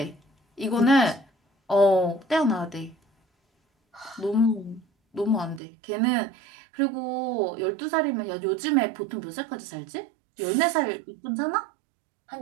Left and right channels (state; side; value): drops out; left; at 5.6 s